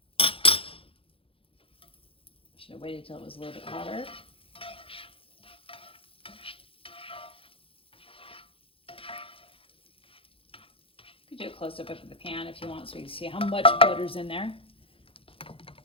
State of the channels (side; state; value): right; late; 0.27 ms